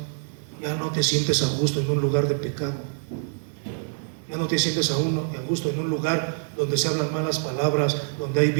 Ya no te sientes a gusto en un lugar de pecado. Ya no te sientes a gusto en un lugar donde se hablan malas palabras, donde hay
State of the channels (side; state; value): left; silent; digital silence